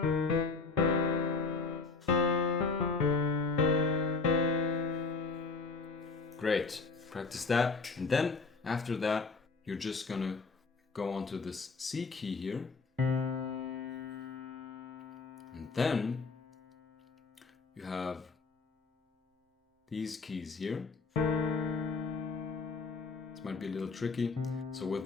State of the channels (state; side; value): quieter; right; 4.3 dB